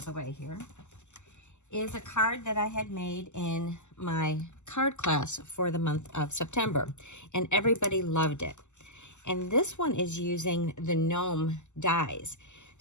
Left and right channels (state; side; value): late; right; 0.84 ms